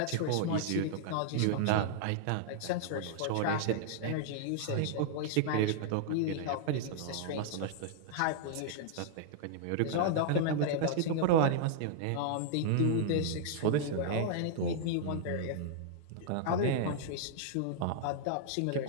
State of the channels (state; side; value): different; both; correlation -0.01